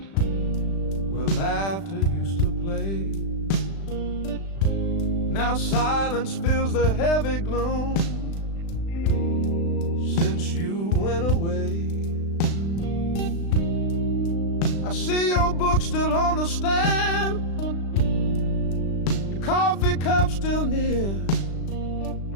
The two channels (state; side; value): late; right; 36 ms